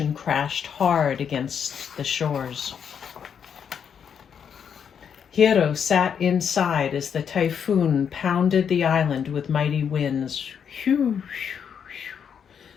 crashed hard against the shores. Hiro sat inside as the typhoon pounded the island with mighty winds.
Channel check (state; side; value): quieter; right; 7.6 dB